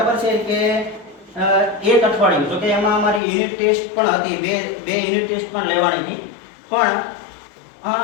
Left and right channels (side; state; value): right; drops out; at 3.2 s